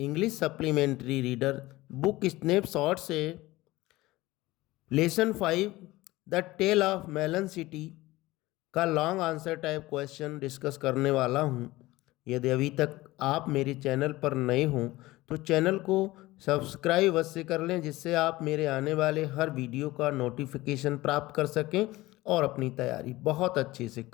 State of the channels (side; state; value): right; quieter; 18.8 dB